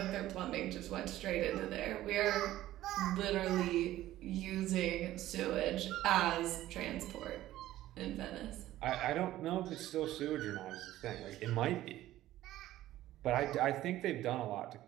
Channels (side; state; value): left; quieter; 14.6 dB